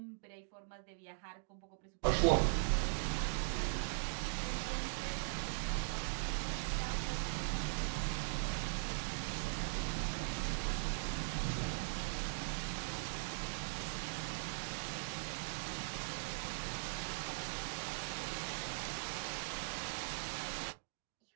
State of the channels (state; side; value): silent; left; digital silence